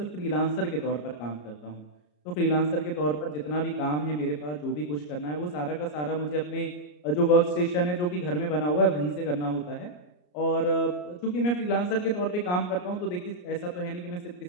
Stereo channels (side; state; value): right; late; 34 ms